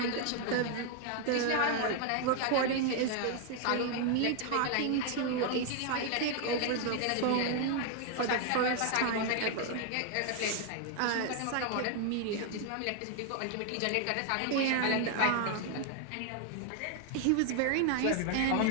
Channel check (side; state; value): both; different; correlation 0.00